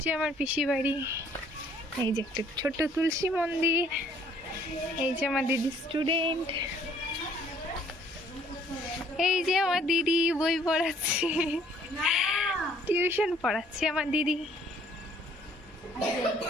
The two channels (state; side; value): normal; both; correlation 0.61